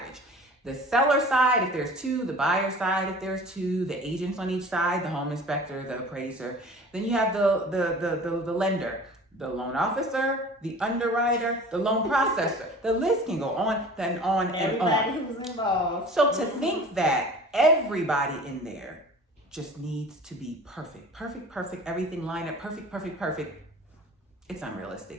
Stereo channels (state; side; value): normal; both; correlation 0.42